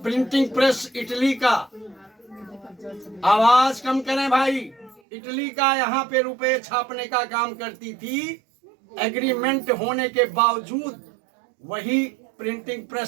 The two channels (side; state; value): left; drops out; at 5.0 s